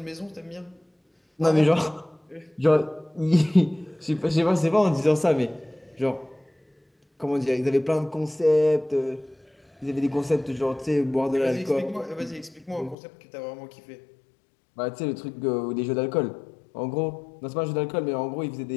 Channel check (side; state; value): right; drops out; at 13.0 s